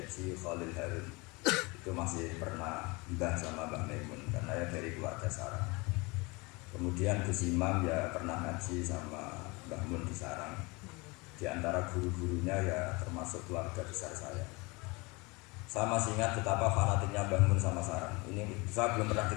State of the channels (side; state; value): right; quieter; 26.1 dB